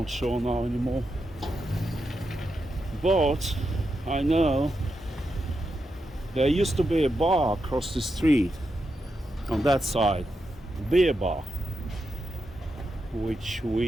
sure now anymore, but I know there used to be a bar across the street on that side, a beer bar, which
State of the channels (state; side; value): normal; both; correlation 0.86